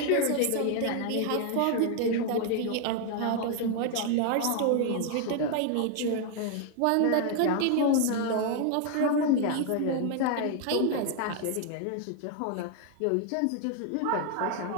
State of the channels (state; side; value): different; both; correlation 0.00